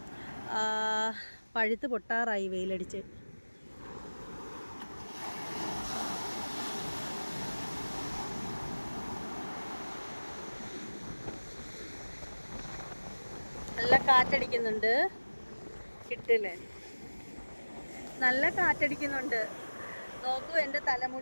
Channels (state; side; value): inverted; both; correlation -1.00